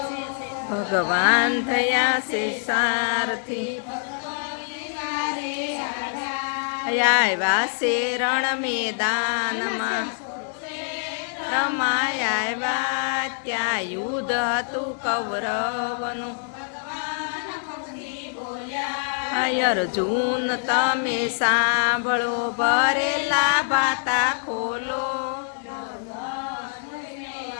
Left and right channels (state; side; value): silent; right; 61 dB below the other